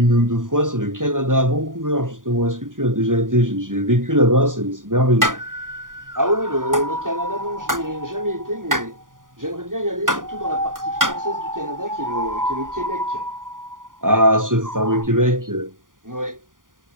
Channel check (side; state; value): left; late; 0.89 ms